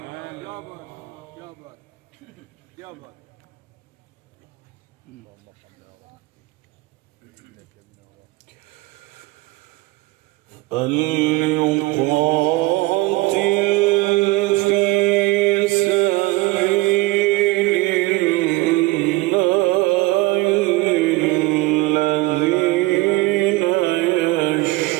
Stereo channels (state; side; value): quieter; left; 20.4 dB